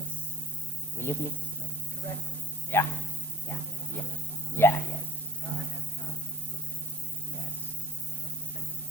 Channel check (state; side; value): normal; both; correlation 0.59